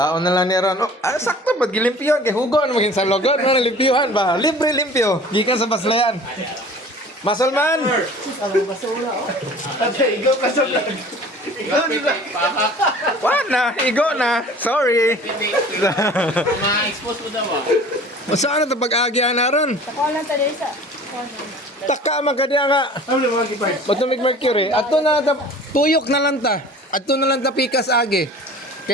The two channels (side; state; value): both; normal; correlation 0.45